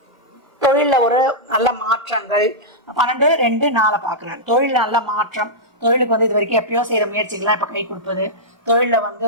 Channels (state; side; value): late; left; 1.1 ms